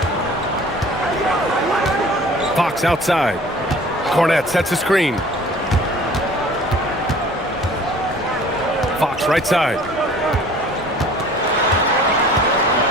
Fox outside. Cornette sets a screen. Fox right side.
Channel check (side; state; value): both; normal; correlation 0.48